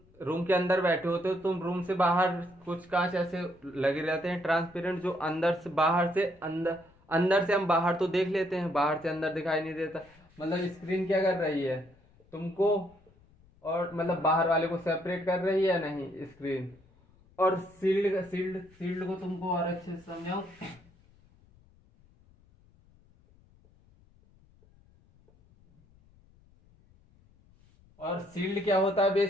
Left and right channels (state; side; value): noise; left; rumble, 29 dB below the sound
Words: रूम के अंदर बैठे होते हो, तुम रूम से बाहर कुछ कांच ऐसे लगे रहते हैं ट्रांसपेरेंट, जो अंदर से अंदर से हम बाहर तो देख लेते हैं, बाहर से अंदर दिखाई नहीं देता। मतलब स्क्रीन क्या कर रही है, तुमको और मतलब बाहर वाले को सेपरेट कर रही है या नहीं स्क्रीन। और शील्ड को तुमको और अच्छे से समझाऊं। और शील्ड क्या होता है